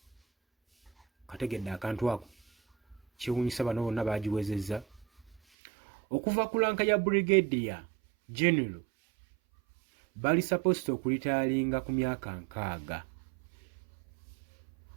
Kategedde akantu ako kiwunyisa bano bonna bagiwezezza. Okuva ku lanka ya brigadier general bali supposed okulitayalinga ku myaka 60.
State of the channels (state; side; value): drops out; left; at 5.4 s